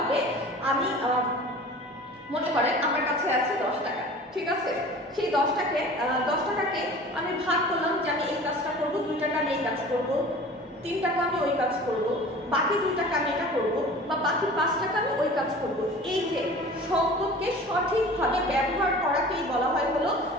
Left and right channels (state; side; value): normal; both; correlation 0.41